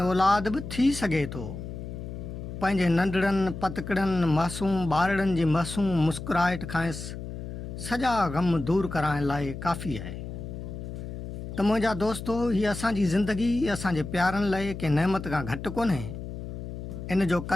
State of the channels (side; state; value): left; noise; hum, 8 dB below the sound